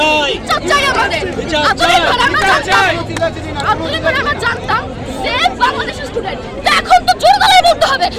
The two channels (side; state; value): both; identical; correlation 1.00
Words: বিচার চাই আমাদের। আমরা জানতাম সেফ বাংলাদেশের স্টুডেন্ট, এখন তো জোর গলায় বলতে হবে